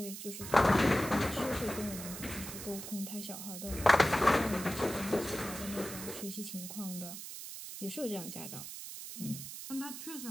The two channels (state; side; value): noise; right; hiss, 9 dB below the sound